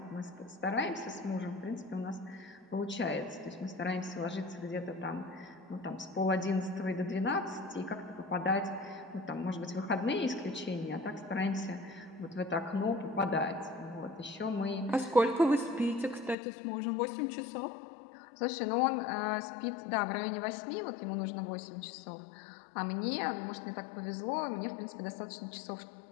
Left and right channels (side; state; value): right; drops out; at 16.4 s